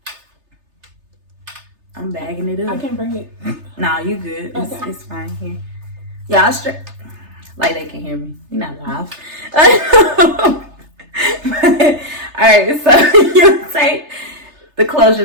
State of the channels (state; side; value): late; left; 3.3 ms